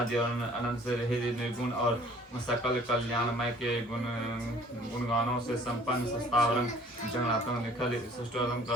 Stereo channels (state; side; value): normal; both; correlation 0.53